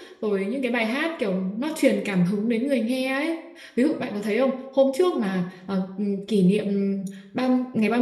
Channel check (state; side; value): identical; both; correlation 1.00